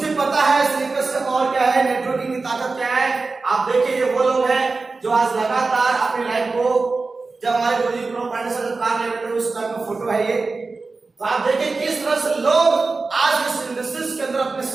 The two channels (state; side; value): quieter; left; 3.9 dB